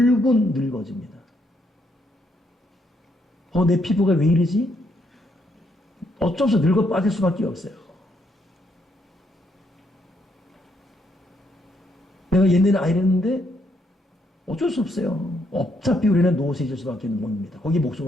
늙어집니다. 내 피부가 왜 이러지? 어쩔 수 없이 늙어 빠질 수밖에 없어요. 내가 옛날에 이랬는데 어쩔 수 없어요. 어차피 우리는 노쇠질 수밖에 없는 몸입니다. 거기 목숨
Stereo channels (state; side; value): normal; both; correlation 0.75